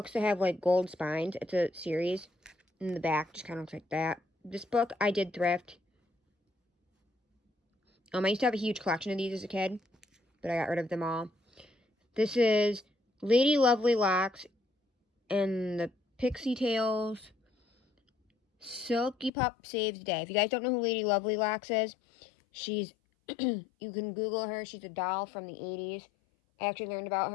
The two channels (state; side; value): drops out; right; at 19.3 s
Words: that have like gold spines. It's a series. In the back, just kind of looks like that. This book, I did thrift. I used to have a huge collection of these as a kid, but I got rid of them all. This is Lady Lovely Locks and the Pixietails. Silky Pup Saves the Day. If you guys don't know who Lady Lovely Locks is, she's, you can Google her. She's a doll from the 80s. I actually learned about